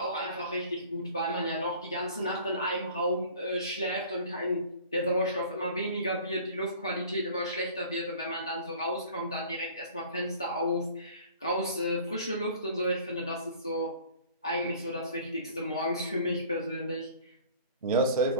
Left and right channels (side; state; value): both; inverted; correlation -0.46